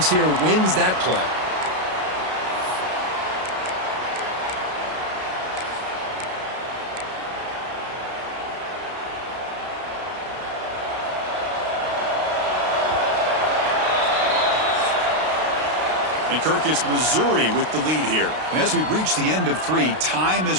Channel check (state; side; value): late; left; 32 ms